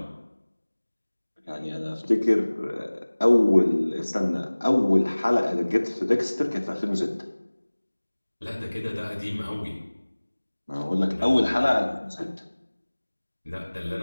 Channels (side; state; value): both; inverted; correlation -1.00